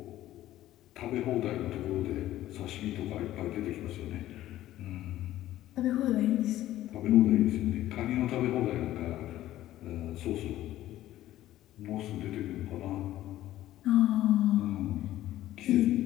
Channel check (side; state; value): right; quieter; 14.1 dB